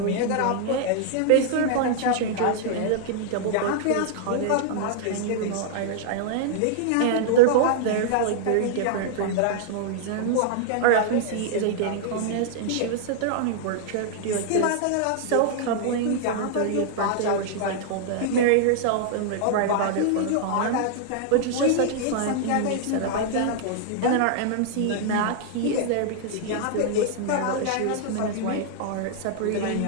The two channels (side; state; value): both; different; correlation -0.01